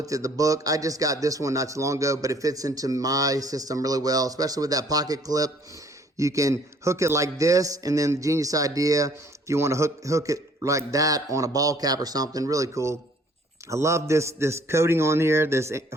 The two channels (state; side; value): normal; both; correlation 0.59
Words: at the book. I just got this one not too long ago, but it fits into my system really well, especially with that pocket clip. You can hook it like this, and then the genius idea, if you want to hook it like that on a ball cap or something, really cool. I love this coating on here, this